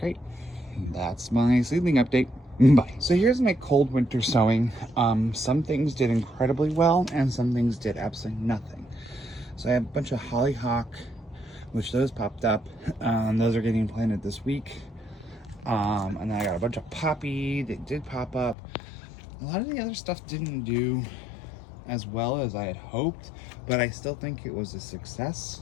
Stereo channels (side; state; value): right; drops out; at 18.6 s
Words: That's my seedling update. Bye. So here's my cold winter sowing. Some things did incredibly well, and some things did absolutely nothing. So I have a bunch of hollyhock, which those popped up. Those are getting planted this week. And then I got a bunch of poppy that did pop up. A lot of the other stuff didn't do as well as I had hoped, but I still think it was a